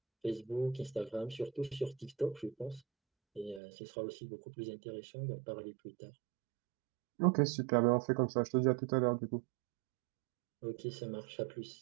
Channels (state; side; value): drops out; left; at 3.6 s